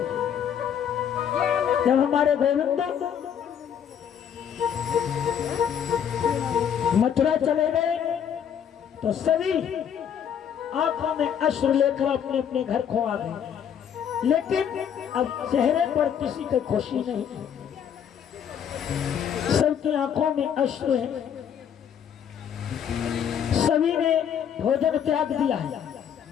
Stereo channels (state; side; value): quieter; right; 8.6 dB